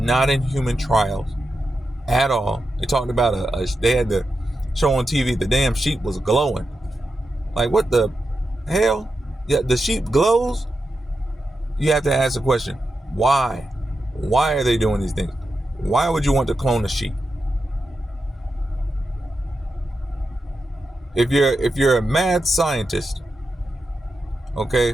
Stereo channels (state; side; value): normal; both; correlation 0.88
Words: in human trials at all. They talked about they had the show on TV, the damn sheep was glowing. Like, what the hell? Yeah, the sheep glows? You have to ask the question, why? Why are they doing these things? Why would you want to clone a sheep? If you're a mad scientist,